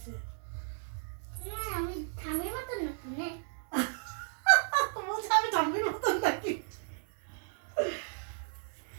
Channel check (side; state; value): left; silent; digital silence